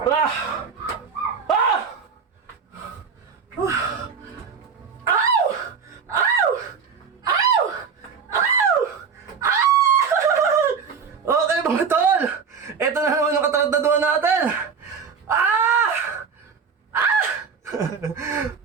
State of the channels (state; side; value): quieter; left; 6.0 dB